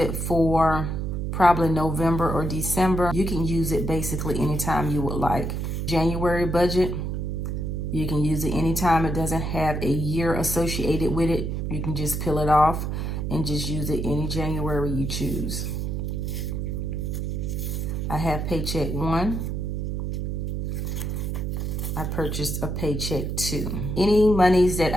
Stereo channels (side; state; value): right; noise; hum, 2 dB below the sound